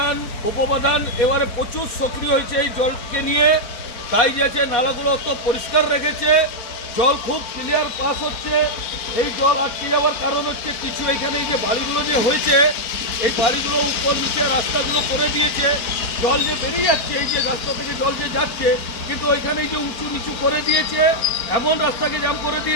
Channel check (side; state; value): right; late; 4.4 ms